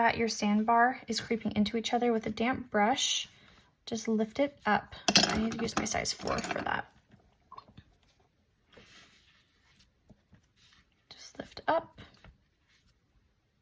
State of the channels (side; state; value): both; identical; correlation 1.00